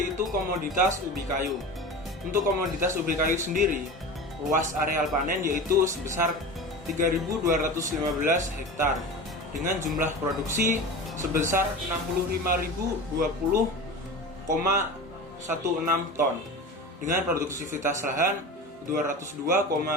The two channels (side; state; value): both; normal; correlation 0.31